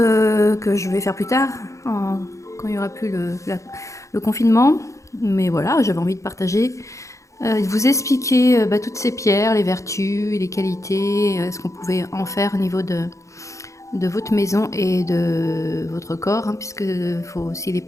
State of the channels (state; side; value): late; right; 0.15 ms